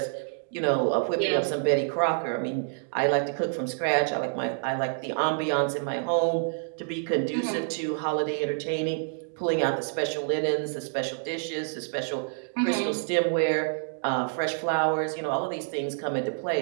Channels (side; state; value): left; silent; digital silence